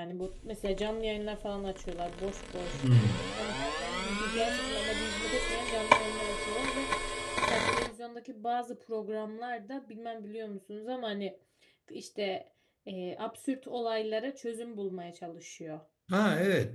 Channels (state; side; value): identical; both; correlation 1.00